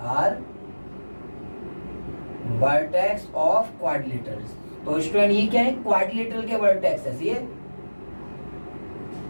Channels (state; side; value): inverted; both; correlation -1.00